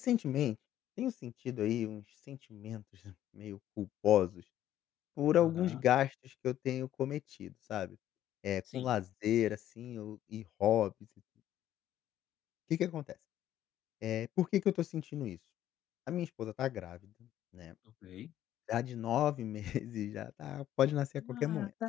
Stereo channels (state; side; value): quieter; right; 12.1 dB